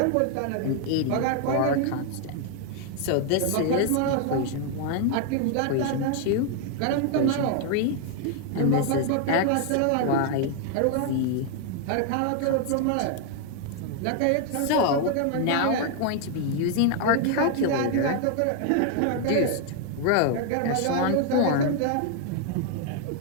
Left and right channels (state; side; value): different; both; correlation 0.00